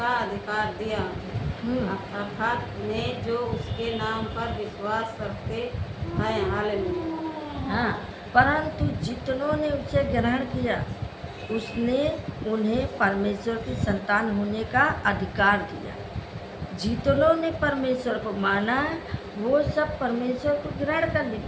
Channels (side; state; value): both; identical; correlation 1.00